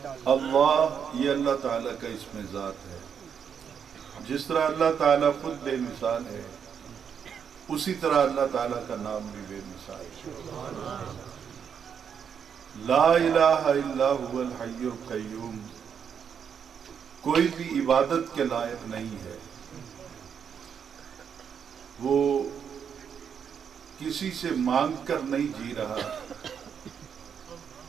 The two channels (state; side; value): quieter; left; 7.4 dB